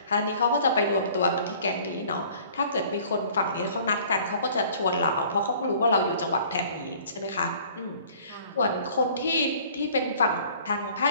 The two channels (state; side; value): inverted; both; correlation -0.52